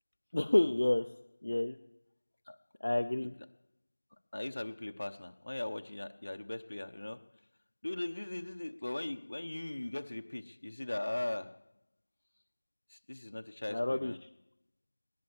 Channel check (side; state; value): both; inverted; correlation -1.00